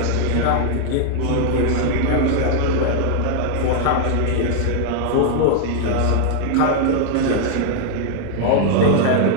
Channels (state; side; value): different; both; correlation 0.00